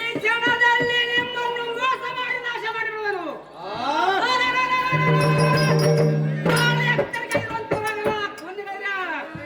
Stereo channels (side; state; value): both; identical; correlation 1.00